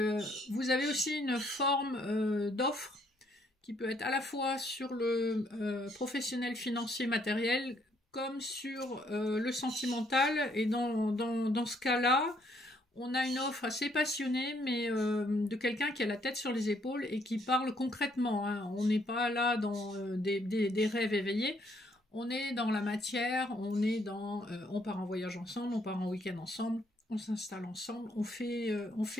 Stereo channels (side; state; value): both; normal; correlation 0.69